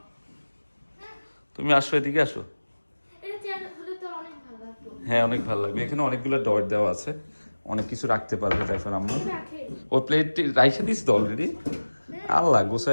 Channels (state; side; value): inverted; both; correlation -1.00